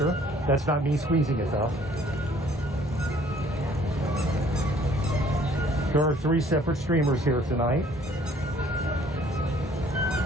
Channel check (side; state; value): both; normal; correlation 0.58